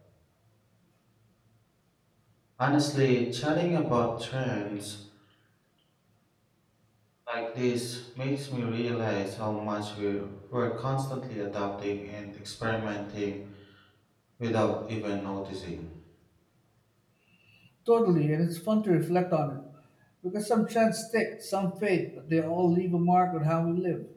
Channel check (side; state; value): both; identical; correlation 1.00